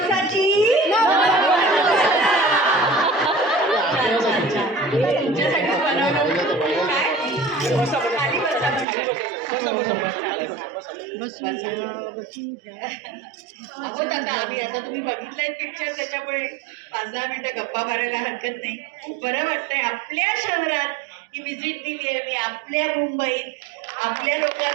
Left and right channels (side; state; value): left; drops out; at 8.8 s